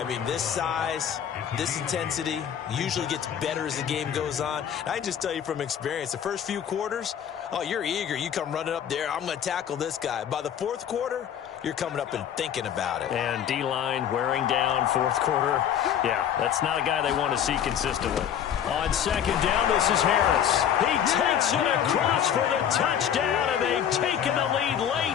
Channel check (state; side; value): quieter; right; 9.2 dB